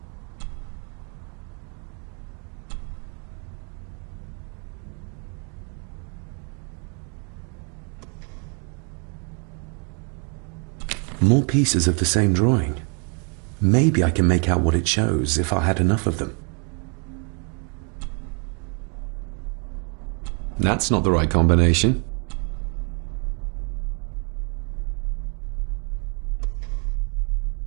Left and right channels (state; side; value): quieter; left; 37.4 dB